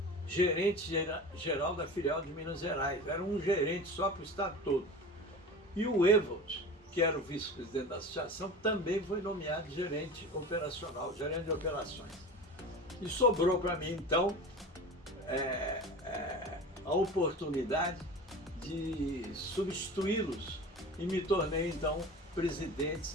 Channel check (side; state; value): both; normal; correlation 0.34